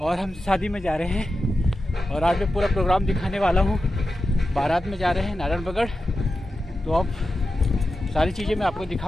और हम शादी में जा रहे हैं और आज मैं पूरा प्रोग्राम दिखाने वाला हूँ। बारात में जा रहे हैं नारायणबगड़, तो अब सारी चीज़ें मैं आपको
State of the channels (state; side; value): normal; both; correlation 0.91